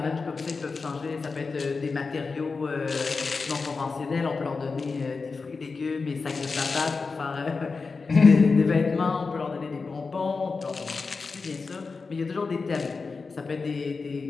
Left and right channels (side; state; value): right; quieter; 4.4 dB